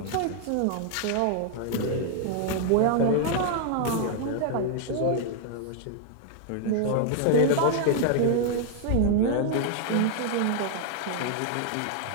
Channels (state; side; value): different; both; correlation 0.00